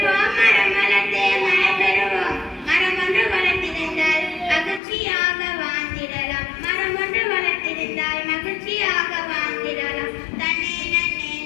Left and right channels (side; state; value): right; drops out; at 4.8 s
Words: மரம் வளர்த்து மழை பெறுவோம். மரம் ஒன்று வளர்த்திருந்தால் மகிழ்ச்சியாக வாழ்ந்திடலாம். மரம் ஒன்று வளர்த்திருந்தால் மகிழ்ச்சியாக வாழ்ந்திடலாம். தன்னே நன்னே